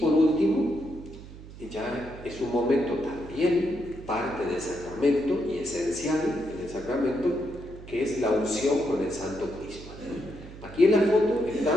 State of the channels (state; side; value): noise; right; hum, 16 dB below the sound